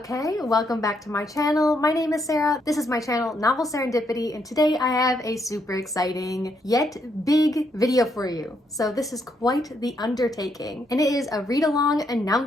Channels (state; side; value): normal; both; correlation 0.76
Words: welcome back to my channel. My name is Sarah. This is my channel, Novel Serendipity, and today I have a super exciting yet big video for you. So this is quite the undertaking, and it is a read-along